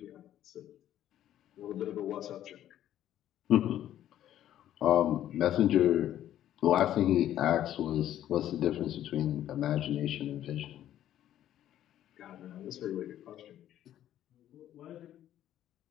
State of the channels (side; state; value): right; quieter; 11.9 dB